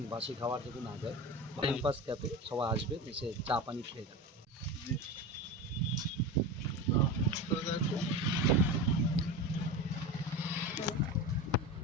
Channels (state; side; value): normal; both; correlation 0.26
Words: বাসি খাবার যদি না দেয়। ক্যাম্পাস ক্যাফে সবাই আসবে, এসে চা পানি খেয়ে যাবে।